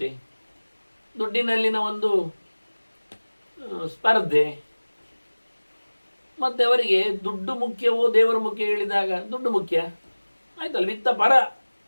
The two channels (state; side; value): inverted; both; correlation -1.00